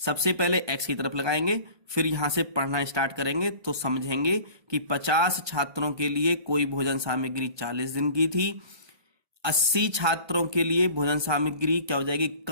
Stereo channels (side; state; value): left; late; 1.2 ms